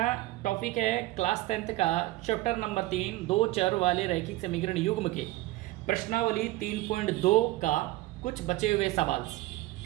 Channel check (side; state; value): left; quieter; 18.1 dB